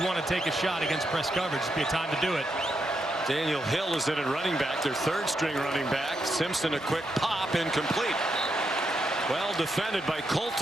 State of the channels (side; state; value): both; normal; correlation 0.82